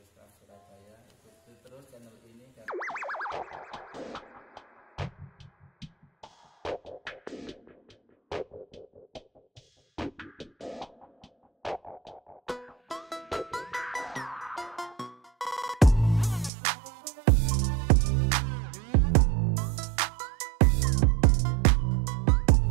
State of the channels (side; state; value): left; drops out; at 16.5 s